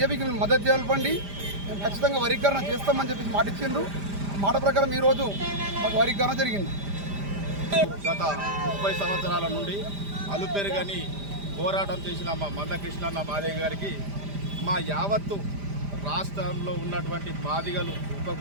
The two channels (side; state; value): left; late; 5.0 ms